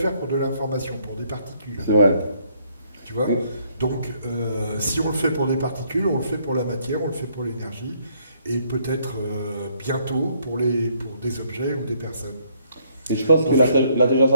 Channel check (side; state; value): both; inverted; correlation -0.68